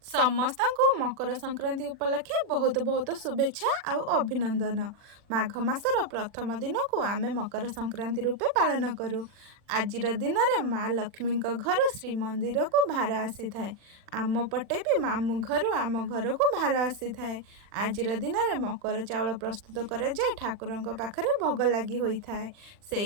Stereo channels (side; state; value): left; late; 40 ms